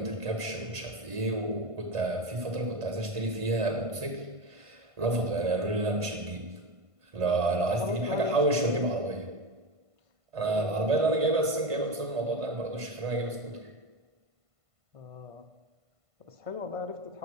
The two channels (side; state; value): left; late; 1.5 ms